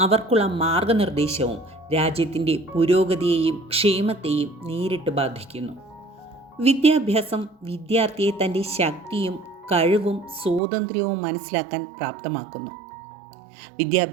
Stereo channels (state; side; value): drops out; left; at 10.6 s